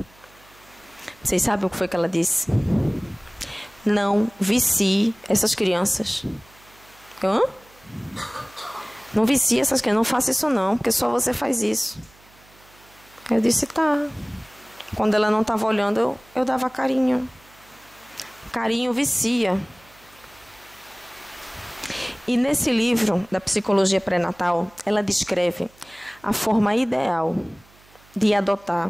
Vocês sabem o que foi que ela disse? Não vicie essas crianças. Hã? Não vicie essas crianças, não faça isso não, porque só você faz isso. Eu disse, tá. Quando ela não estava olhando, eu dava carinho. Carinho vicia. E nesse livro da psicologia pré-natal, ela descreve a forma ideal de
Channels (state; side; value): noise; right; hum, 28 dB below the sound